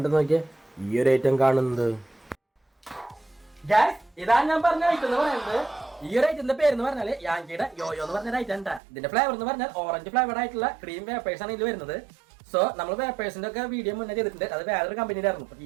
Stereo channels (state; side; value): drops out; left; at 8.8 s